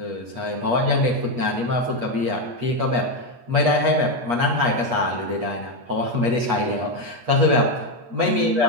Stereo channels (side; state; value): left; late; 8.3 ms